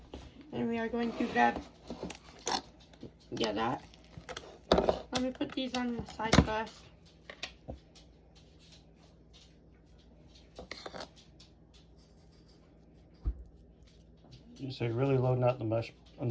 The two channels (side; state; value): both; identical; correlation 1.00